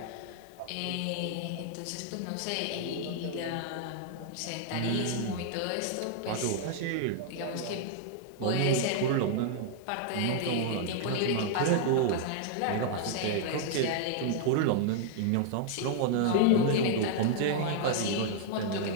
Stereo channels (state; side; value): different; both; correlation -0.01